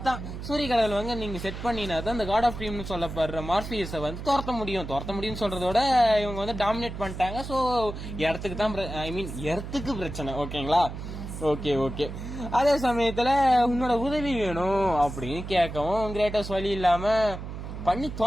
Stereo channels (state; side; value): noise; right; hum, 8 dB below the sound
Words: சூரிய கடவுள் வந்து நீங்க செட் பண்ணினா தான் இந்த காட் ஆஃப் ட்ரீம்னு சொல்லப்படுற மார்பியஸை வந்து துரத்த முடியும் சொல்றதோட இவங்க வந்து டாமினேட் பண்ணிட்டாங்க. சோ இடத்துக்கு தான் எர்த்துக்கு பிரச்சனை. ஓகேங்களா, ஓகே. அதே சமயத்துல உன்னோட உதவி வேணும் அப்படின்னு கேட்கவும் கிரேட்டஸ் வழி இல்லாம பண்ணி